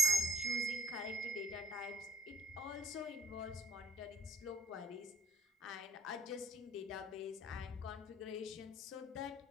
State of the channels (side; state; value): both; normal; correlation 0.63